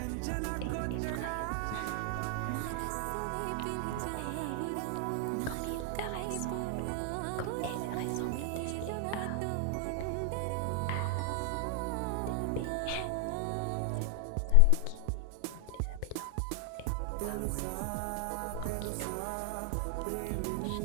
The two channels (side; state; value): both; different; correlation 0.00